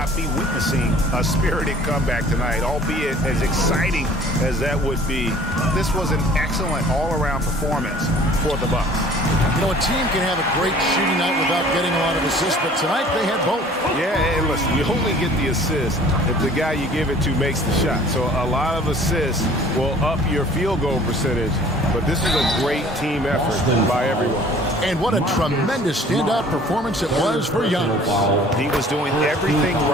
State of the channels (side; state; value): both; normal; correlation 0.51